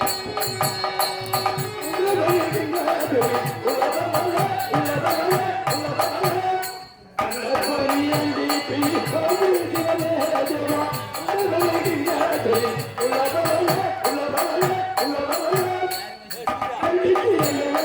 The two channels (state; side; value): identical; both; correlation 1.00